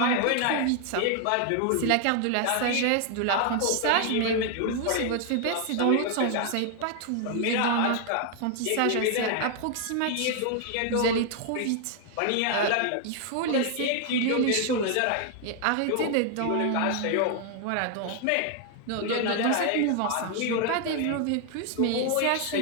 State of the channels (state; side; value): different; both; correlation 0.00